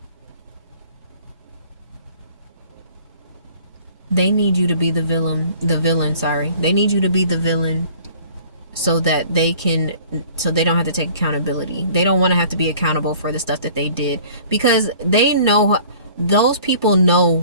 They need you to be the villain, sorry. They need you to be the villain so that so they don't have to take accountability. They don't want to have to be accountable for the stuff that they did, because they know, those people know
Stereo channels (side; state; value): both; inverted; correlation -0.51